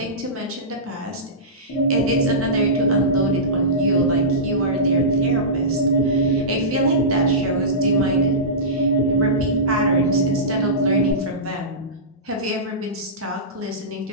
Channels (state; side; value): normal; both; correlation -0.18